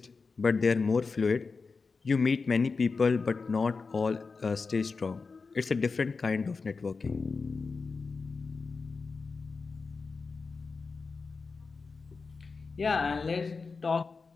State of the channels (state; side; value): quieter; right; 4.5 dB